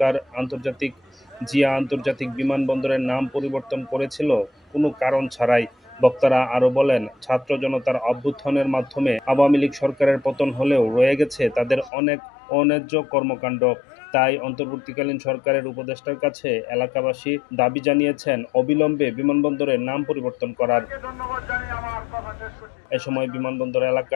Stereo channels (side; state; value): right; drops out; at 11.9 s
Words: জিয়া আন্তর্জাতিক বিমানবন্দরের নাম পরিবর্তন করেছিল কোনো কারণ ছাড়াই। বক্তারা আরও বলেন, ছাত্র জনতার অভ্যুত্থানের মাধ্যমে আওয়ামী লীগ সরকারের পতন হলেও রয়ে গেছে তাদের অনেক অন্যায্য কর্মকাণ্ড। তাই অন্তর্বর্তীকালীন সরকারের উপদেষ্টার কাছে এলাকাবাসী দাবি জানিয়েছেন অবিলম্বে বিমানবন্দরের নাম পরিবর্তন করার। এ সময় বিমানবন্দর